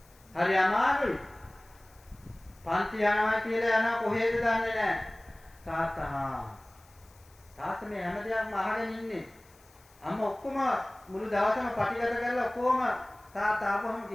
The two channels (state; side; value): noise; left; hiss, 28 dB below the sound